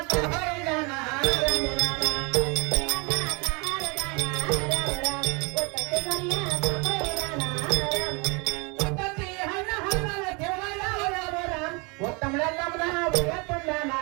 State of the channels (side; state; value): left; quieter; 30.1 dB